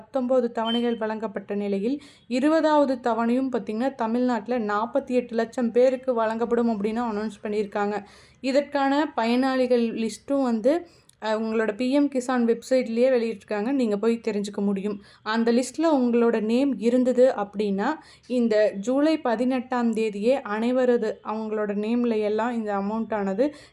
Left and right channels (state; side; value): identical; both; correlation 1.00